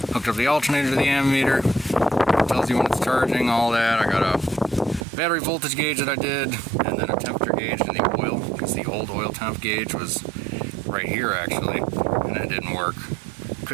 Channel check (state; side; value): drops out; left; at 5.1 s